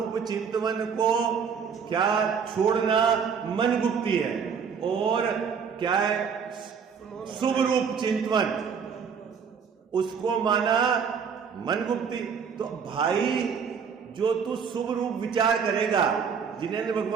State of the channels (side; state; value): left; quieter; 6.5 dB